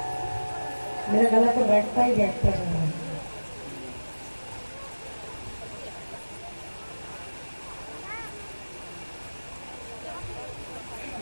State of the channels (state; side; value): inverted; both; correlation -1.00